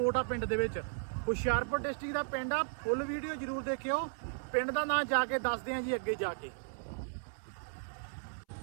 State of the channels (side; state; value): left; silent; 54 dB below the other